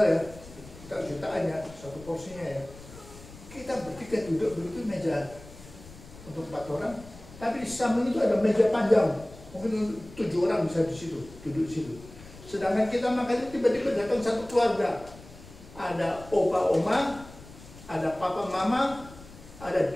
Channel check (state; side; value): noise; left; rumble, 18 dB below the sound